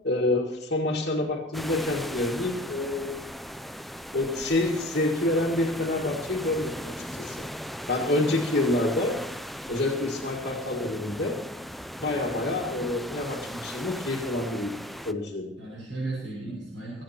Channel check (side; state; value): both; normal; correlation 0.40